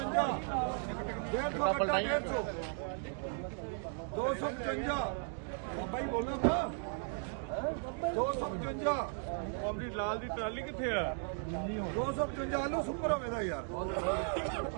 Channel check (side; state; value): left; silent; 54 dB below the other